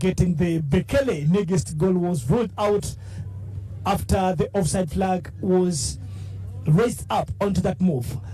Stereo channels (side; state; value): both; identical; correlation 1.00